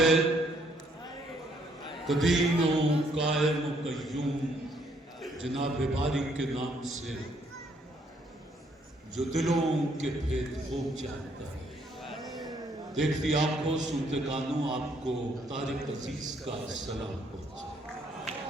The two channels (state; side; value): normal; both; correlation 0.69